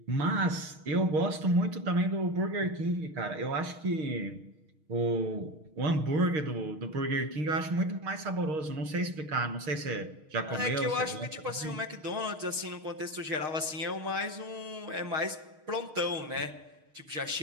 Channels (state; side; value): late; left; 6.4 ms